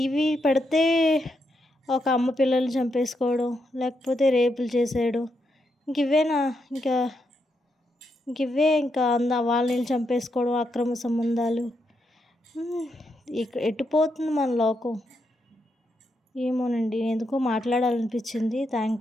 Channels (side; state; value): both; normal; correlation 0.81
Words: పెడితే ఒక అమ్మ పిల్లల్ని చంపేసుకోవడం, లేకపోతే రేపులు చేసేయడం. ఇవేనా ఇంకా ఇంకా వాళ్ళని చంపేసుకోవడం, అక్రమ సంబంధాలు. ఎటు పోతుంది మన లోకం? ఏమోనండి ఎందుకో మాట్లాడాలనిపించింది.